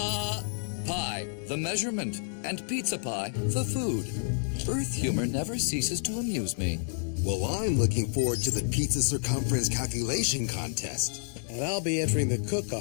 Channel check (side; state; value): right; silent; digital silence